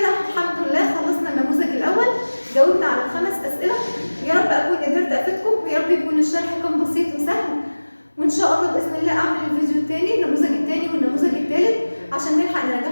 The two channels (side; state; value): both; inverted; correlation -1.00